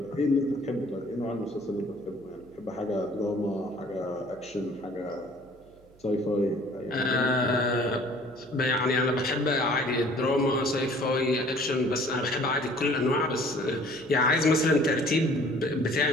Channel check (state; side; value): noise; right; hum, 27 dB below the sound